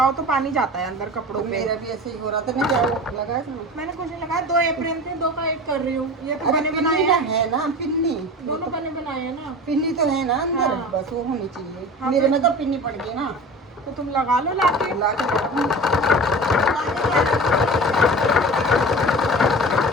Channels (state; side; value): normal; both; correlation 0.34